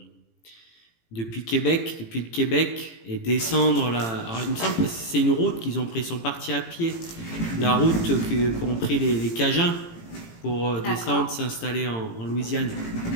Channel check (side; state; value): right; late; 18 ms